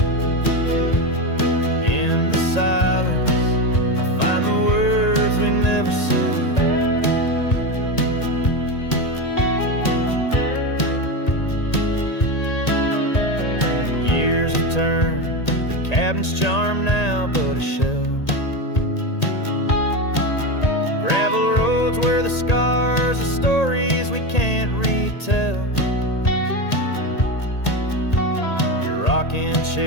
In the silence, I find the words we never said. Years have turned, the cabin's charm now but a shell. Gravel roads where the scars are stories we can't retell. Your rocking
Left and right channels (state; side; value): late; right; 1.8 ms